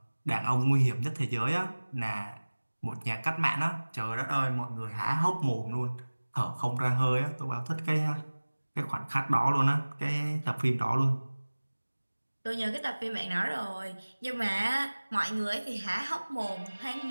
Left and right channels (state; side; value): inverted; both; correlation -1.00